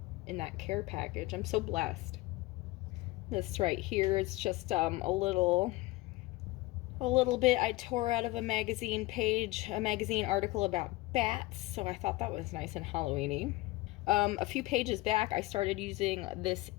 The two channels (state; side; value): quieter; right; 20.3 dB